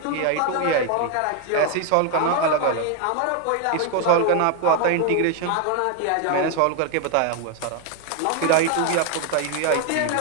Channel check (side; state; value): both; different; correlation 0.01